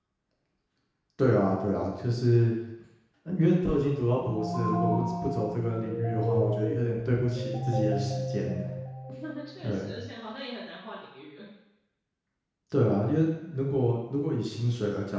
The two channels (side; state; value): both; identical; correlation 1.00